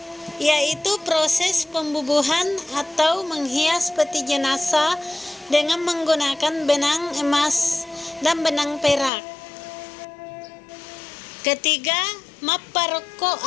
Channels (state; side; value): drops out; right; at 9.1 s